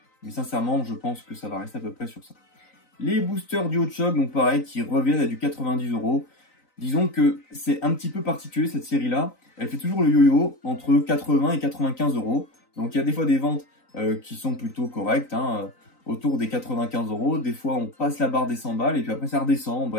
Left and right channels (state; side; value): late; right; 3.9 ms